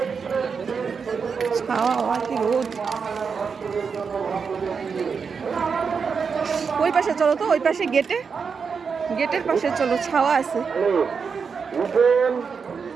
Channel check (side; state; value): left; quieter; 5.8 dB